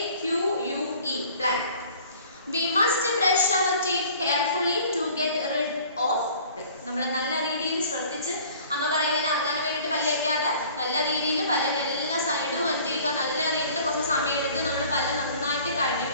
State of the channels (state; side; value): inverted; both; correlation -0.50